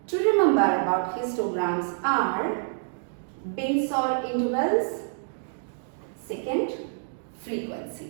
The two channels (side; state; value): left; silent; digital silence